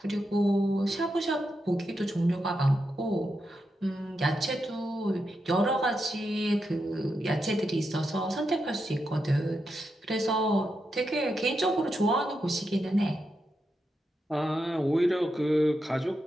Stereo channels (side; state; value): both; normal; correlation 0.85